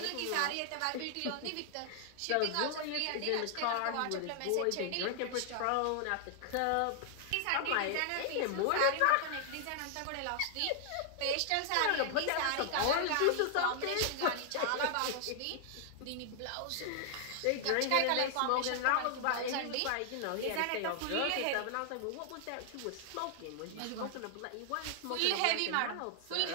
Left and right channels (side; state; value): both; different; correlation 0.00